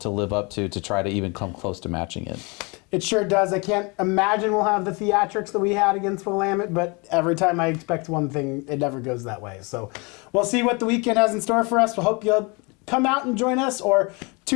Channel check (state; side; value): quieter; right; 29.3 dB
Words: live up to try to even come close to matching it. It sure does. I can't imagine we'll have the theatrics that we had against Willamette, but every time I expect one thing, it never goes that way. So we'll see what the weekend has in store for us. We'll hope you'll come out and join us or